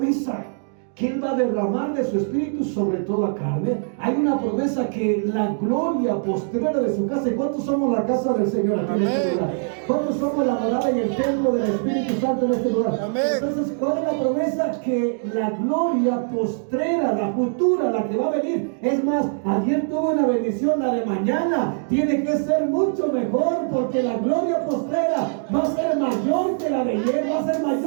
que Él va a derramar de su espíritu sobre toda carne. Hay una promesa que la gloria postrera de su casa. ¿Y cuántos somos la casa del Señor aquí en este lugar? ¿Cuántos somos la morada y el templo del Espíritu Santo en este lugar? Amén. Entonces, ¿cuál es la promesa? Que la gloria postrera, la futura, la que va a venir. Es más, ayer tuve una bendición, la de mañana tiene que ser mucho mejor, porque la gloria postrera va a ser mayor que la de ayer, va a ser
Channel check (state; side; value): silent; left; digital silence